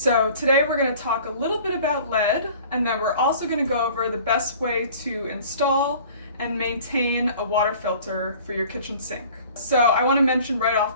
today we're going to talk a little bit about lead, and then we're also going to go over the best way to install and maintain a water filter for your kitchen sink. So I want to mention right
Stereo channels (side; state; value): both; inverted; correlation -0.48